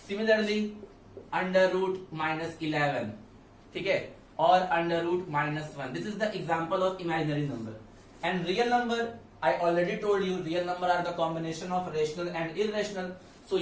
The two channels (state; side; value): identical; both; correlation 1.00